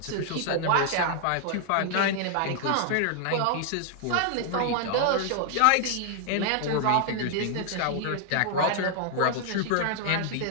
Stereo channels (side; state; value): both; different; correlation 0.00